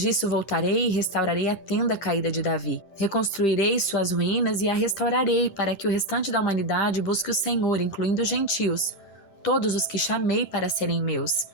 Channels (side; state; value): right; late; 11 ms